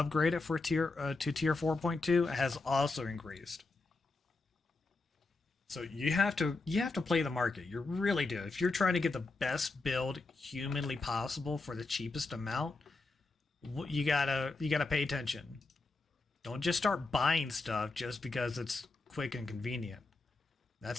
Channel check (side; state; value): right; quieter; 3.5 dB